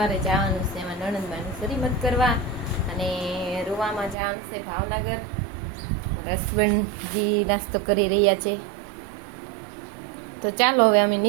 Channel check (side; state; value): left; drops out; at 4.2 s